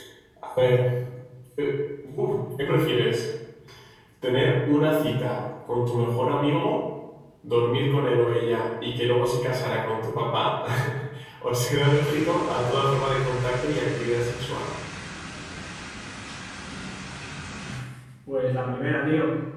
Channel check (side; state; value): both; identical; correlation 1.00